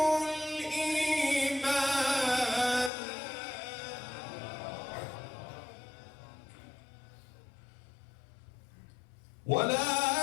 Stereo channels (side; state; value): right; drops out; at 2.9 s